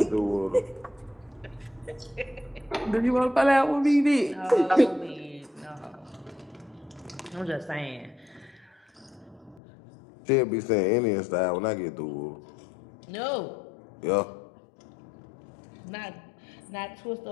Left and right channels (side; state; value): right; drops out; at 9.6 s